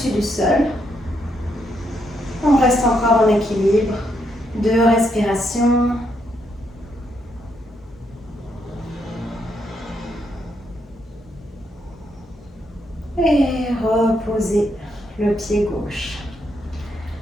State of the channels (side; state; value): both; normal; correlation 0.77